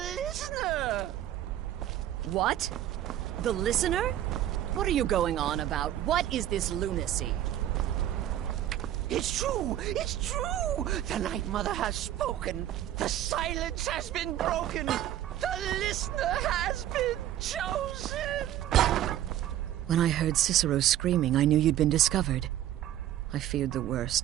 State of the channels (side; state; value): left; quieter; 12.2 dB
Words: listener. What? The listener? What are you going on about? What is this lunacy? It's true! It's true! The Night Mother has spoken! The silence has been broken! The listener has been chosen! When I heard Cicero screaming, I knew you'd been discovered. I feared the